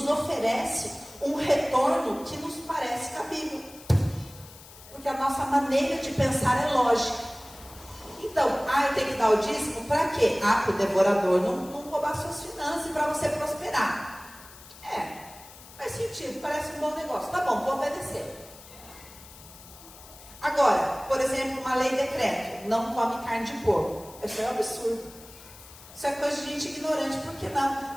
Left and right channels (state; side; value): noise; left; hiss, 19 dB below the sound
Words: oferece um retorno que nos parece cabível. Porque a nossa maneira de pensar é lógica. Então, eu tenho que dar o dízimo para quê? Para o devorador não roubar suas finanças e para você prosperar. Faz sentido, parece um bom negócio. Tá bom, vou obedecer. Agora, por exemplo, uma lei decreto, não come carne de porco. Isso é um absurdo. Isso é coisa de gente ignorante. Por que não?